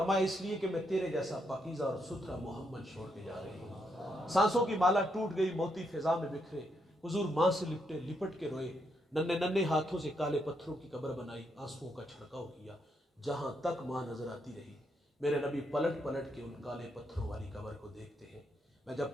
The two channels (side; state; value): both; normal; correlation 0.78